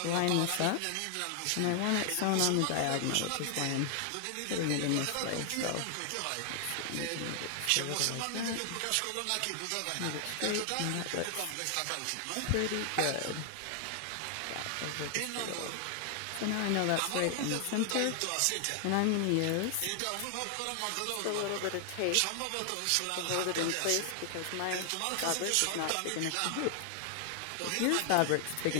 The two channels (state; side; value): different; both; correlation 0.00